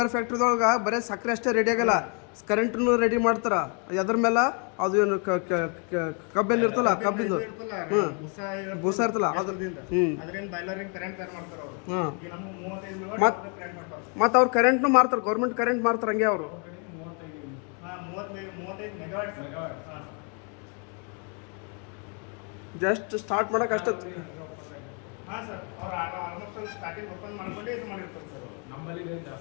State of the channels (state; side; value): quieter; right; 37.5 dB